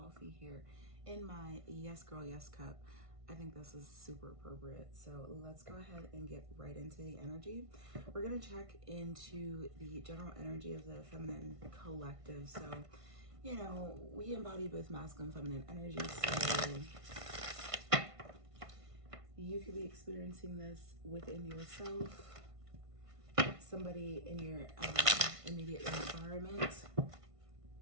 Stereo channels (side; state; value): left; late; 1.5 ms